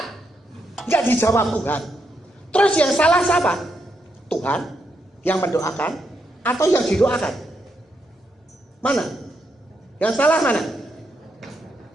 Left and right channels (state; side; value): normal; both; correlation 0.80